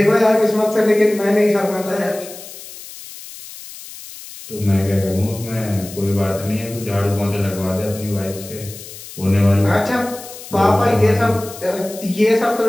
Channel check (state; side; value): noise; left; hiss, 15 dB below the sound